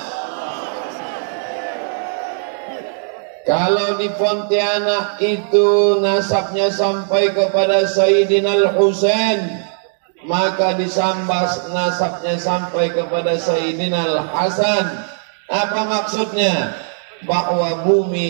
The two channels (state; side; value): silent; left; digital silence